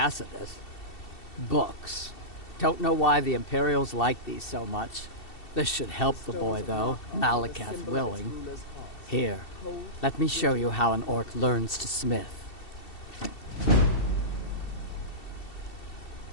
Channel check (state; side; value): late; right; 2.7 ms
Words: Books. Don't know why the Imperials like these so much. This should help the boy, though, Malakath willing. Here, let me show you how an orc learns to smith.